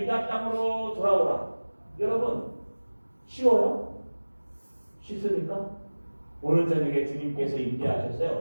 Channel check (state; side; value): inverted; both; correlation -1.00